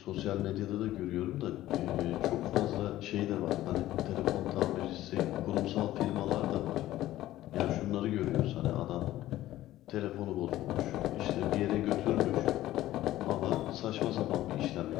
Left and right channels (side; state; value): right; quieter; 14.8 dB